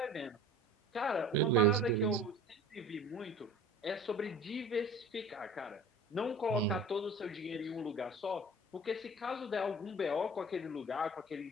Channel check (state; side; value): normal; both; correlation 0.42